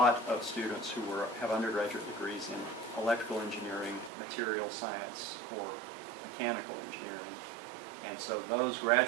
of students who have undergraduate degrees in electrical engineering, material science, or mechanical engineering. And so those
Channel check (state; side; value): drops out; left; at 4.1 s